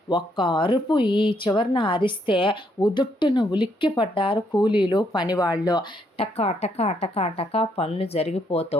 ఒక్క అరుపు ఈ చివరిన అరిస్తే ఉదుట్టున ఉలిక్కి పడ్డారు కూలీలు పనివాళ్ళు. టకా టకా టకా టకా పనులు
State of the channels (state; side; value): normal; both; correlation 0.73